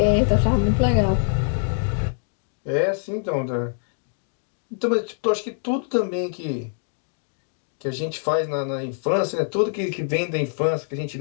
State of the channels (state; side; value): silent; right; digital silence